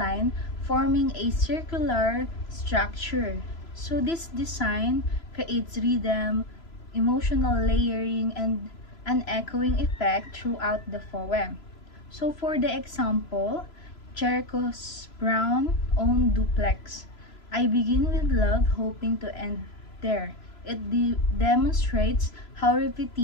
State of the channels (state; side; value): late; right; 3.0 ms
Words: forming a circular structure. So this design creates rhythm, emotional layering, and an echoing effect throughout the poem. So for the example, Jericho's Brown own duplex. I begin with love, hoping to end there. It demonstrates how